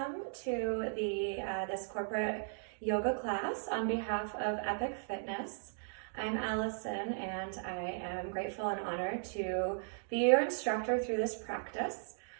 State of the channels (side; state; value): left; silent; digital silence